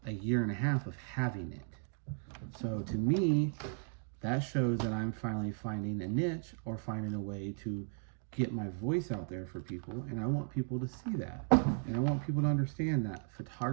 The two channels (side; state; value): left; silent; 54 dB below the other